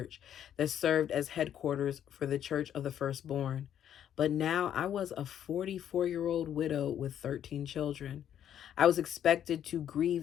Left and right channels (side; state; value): right; quieter; 10.0 dB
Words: that served as headquarters for the Church of the Firstborn. But now I was a 44-year-old widow with 13 children. I was expected to